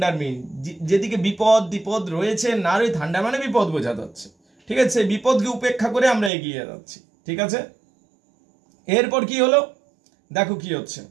মিন, যেদিকে বিপদ রয়েছে, না রয়ে থান্ডার মানে বিপদ বোঝা যাচ্ছে, ঠিক আছে? সেই বিপদকে উপেক্ষা করে আমরা এগিয়ে যাচ্ছি, ঠিক আছে? এরপর কি হলো দেখো, কি হচ্ছে,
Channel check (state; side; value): drops out; left; at 6.3 s